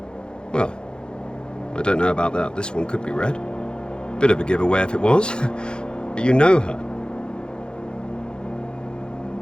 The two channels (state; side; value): late; right; 0.049 ms